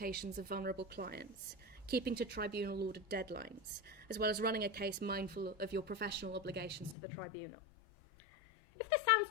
of vulnerable clients, keeping to tribunal-ordered deadlines, as well as running a case mindful of your professional obligations to the tribunal. If this sounds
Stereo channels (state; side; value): drops out; right; at 7.0 s